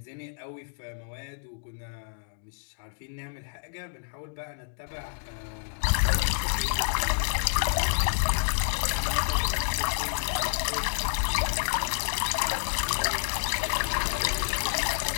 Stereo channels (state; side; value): silent; right; digital silence